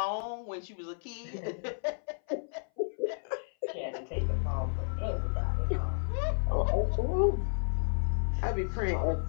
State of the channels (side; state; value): right; silent; 56 dB below the other